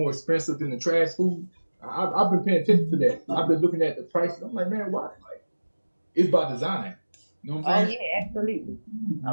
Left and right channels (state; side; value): inverted; both; correlation -1.00